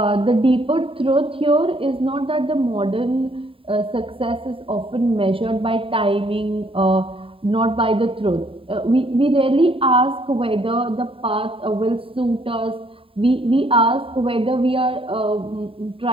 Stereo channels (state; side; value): late; left; 0.26 ms